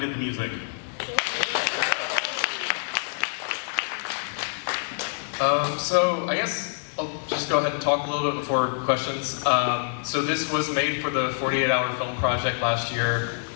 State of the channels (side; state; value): right; silent; digital silence